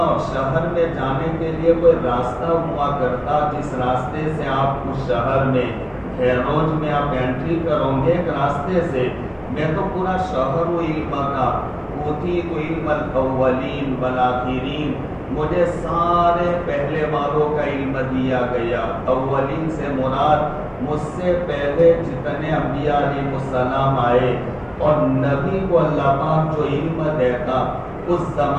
شہر میں جانے کے لیے کوئی راستہ ہوا کرتا جس راستے سے آپ اس شہر میں خیروج میں آپ انٹری کرو گے، ایک راستے سے، میں تو پورا شہر ہوں علم کا، اوتیت علم الاولین والآخرین، مجھے سارے پہلے والوں کا علم دیا گیا۔ اولین سے مراد مجھ سے پہلے جتنے انبیاء علیہ السلام آئے، اور نبی کو اللہ پاک جو علم دیتا، اس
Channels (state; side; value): identical; both; correlation 1.00